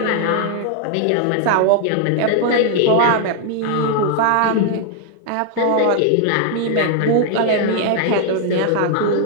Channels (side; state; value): both; different; correlation 0.00